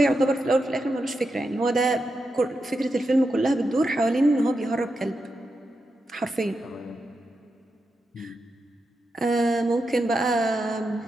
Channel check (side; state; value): both; normal; correlation 0.87